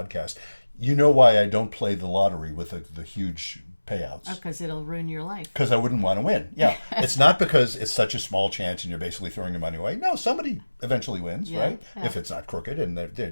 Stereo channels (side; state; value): both; inverted; correlation -1.00